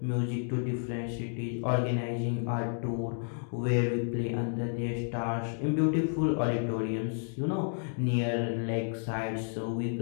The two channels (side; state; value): right; silent; digital silence